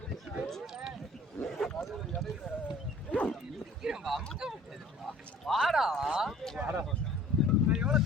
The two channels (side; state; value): both; normal; correlation 0.50